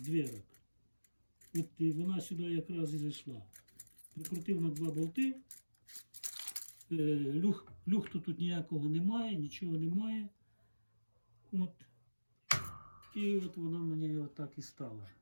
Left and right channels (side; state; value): both; inverted; correlation -1.00